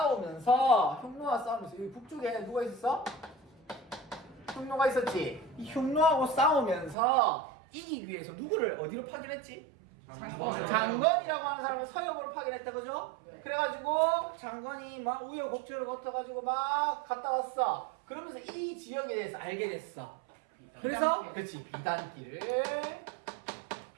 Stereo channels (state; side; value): drops out; left; at 7.0 s